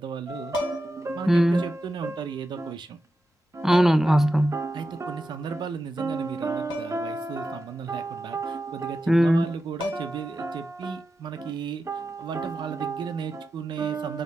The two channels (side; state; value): both; normal; correlation 0.90